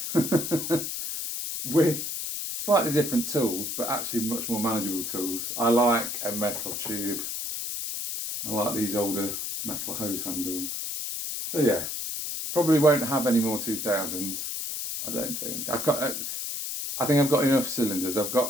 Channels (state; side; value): noise; left; hiss, 4 dB below the sound